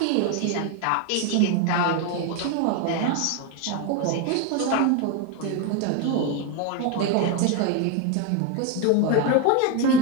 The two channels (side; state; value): both; different; correlation 0.02